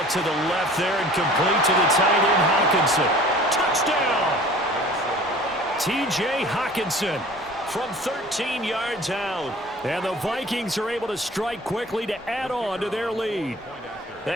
to the left there and complete to the tight end, Hawkinson. Touchdown! T.J. Hawkinson from 13 yards out. And the Vikings are able to strike quickly to add on to their lead.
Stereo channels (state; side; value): normal; both; correlation 0.46